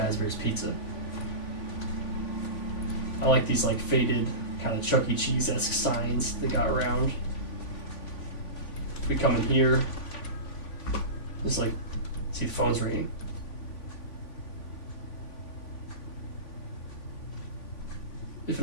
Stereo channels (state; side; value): late; right; 3.5 ms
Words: Pizza. I like these like faded, kind of Chuck E. Cheese-esque signs they got around. If we come in here, there's like, see the phone's ringing. If